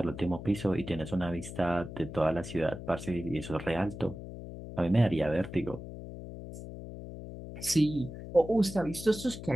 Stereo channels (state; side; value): noise; left; hum, 11 dB below the sound